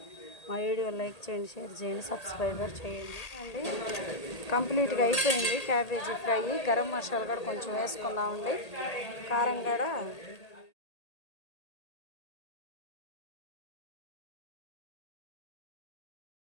మా వీడియో లైక్ చేయండి, షేర్ చేయండి, సబ్స్క్రైబ్ చేయండి అండి. కంప్లీట్గా అయిపోయింది క్యాబేజీ ఫ్రై. గరం మసాలా కూడా కొంచెం వేసుకుందామండి. కారం కూడా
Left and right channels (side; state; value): right; late; 1.8 ms